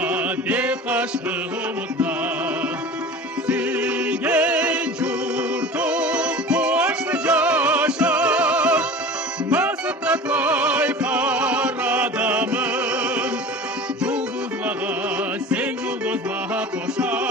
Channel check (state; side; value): normal; both; correlation 0.37